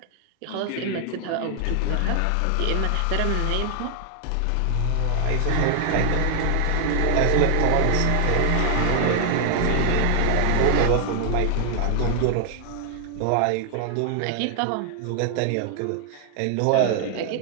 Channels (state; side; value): different; both; correlation 0.00